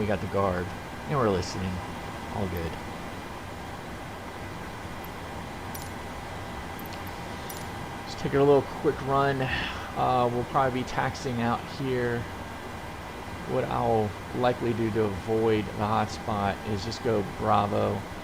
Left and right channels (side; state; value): both; identical; correlation 1.00